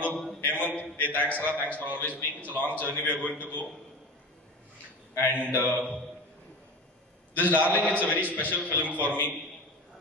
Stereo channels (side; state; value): both; normal; correlation 0.31